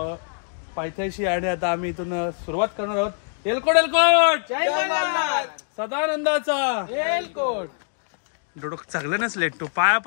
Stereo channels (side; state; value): right; silent; digital silence